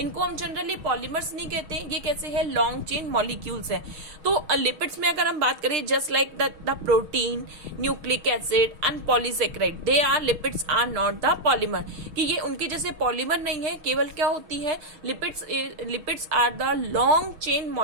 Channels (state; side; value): late; left; 6.3 ms